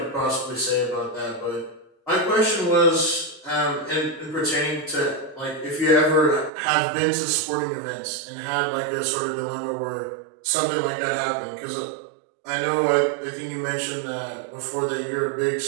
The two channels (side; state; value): left; drops out; at 6.5 s